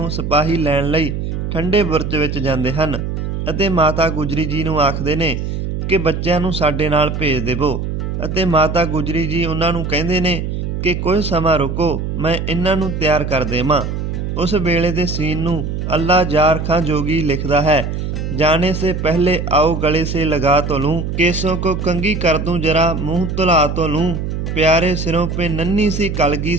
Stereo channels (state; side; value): noise; right; hum, 3 dB below the sound